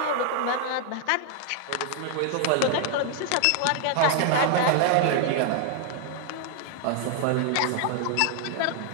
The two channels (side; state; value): both; different; correlation 0.00